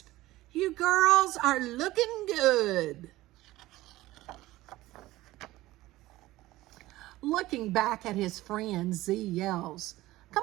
You girls are looking good. Looking back at his friend, Z yells,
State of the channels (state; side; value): quieter; left; 17.3 dB